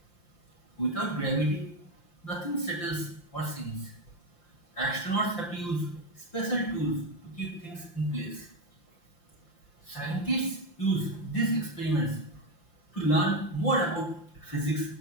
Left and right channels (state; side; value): late; right; 5.8 ms